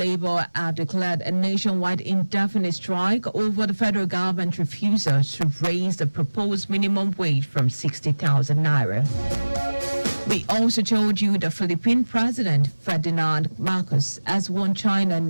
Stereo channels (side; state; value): both; inverted; correlation -1.00